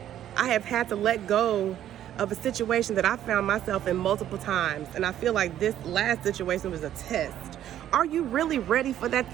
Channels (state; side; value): quieter; left; 11.5 dB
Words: I have had to let go of a situation that I found myself in multiple times. And I feel like this last situation was a test. Are you really ready for that